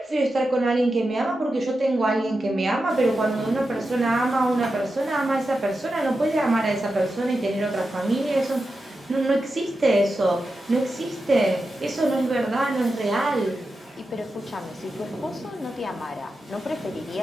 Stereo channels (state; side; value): normal; both; correlation 0.90